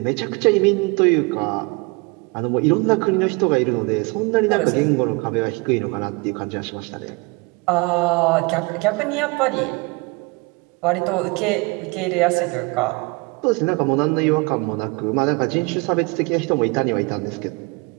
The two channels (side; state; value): left; quieter; 28.2 dB